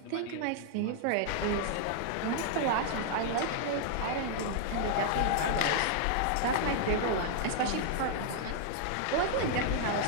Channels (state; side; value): different; both; correlation -0.01